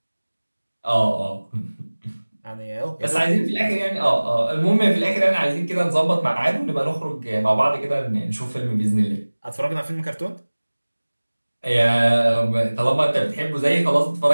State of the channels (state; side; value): inverted; both; correlation -1.00